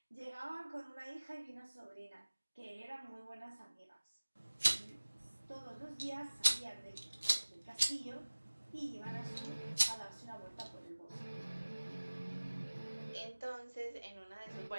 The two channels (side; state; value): both; inverted; correlation -1.00